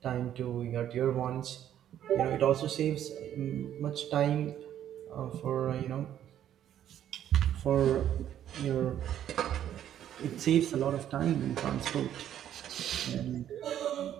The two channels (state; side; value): quieter; left; 10.8 dB